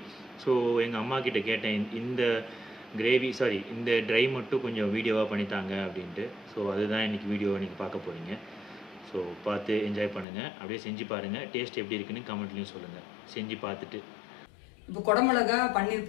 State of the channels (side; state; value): right; drops out; at 10.2 s